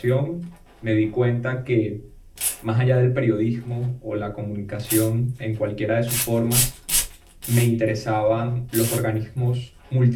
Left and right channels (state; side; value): identical; both; correlation 1.00